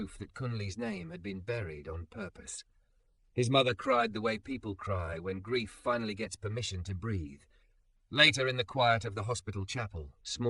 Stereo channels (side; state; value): both; identical; correlation 1.00